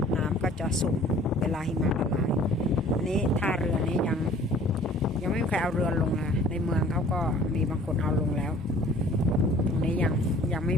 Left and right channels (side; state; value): both; normal; correlation 0.51